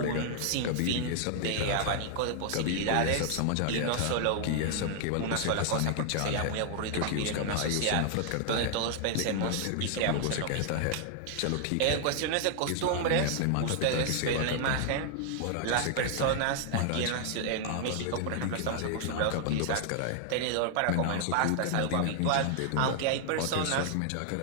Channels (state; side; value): different; both; correlation 0.00